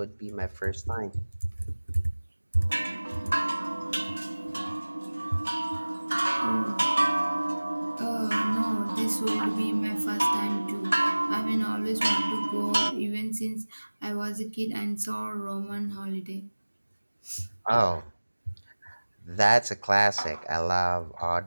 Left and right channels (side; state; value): both; inverted; correlation -1.00